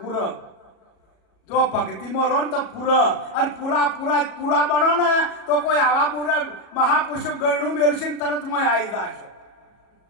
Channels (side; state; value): right; late; 37 ms